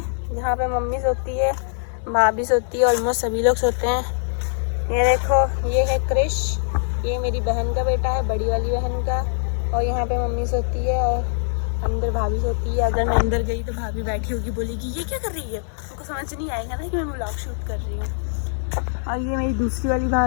जहाँ पे मम्मी सोती है, भाभी सोती है, ऑलमोस्ट सभी लोग सोते हैं। ये देखो ये है क्रिश, ये मेरी बहन का बेटा है, बड़ी वाली बहन का। और यहाँ पे मम्मी सोती है और अंदर भाभी सोती है। अगर मैं अंदर गई तो भाभी बैठी होगी, बोलेगी ये क्या कर रही है, उनको समझ नहीं आएगा ना कि मैं व्लॉग शूट कर रही हूँ। और ये मेरी दूसरी वाली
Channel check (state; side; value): silent; right; 64 dB below the other